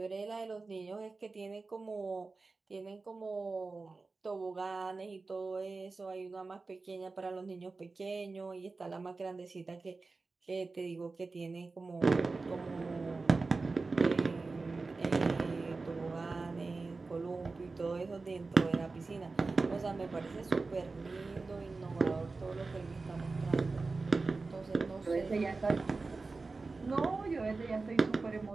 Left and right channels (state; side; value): quieter; left; 3.8 dB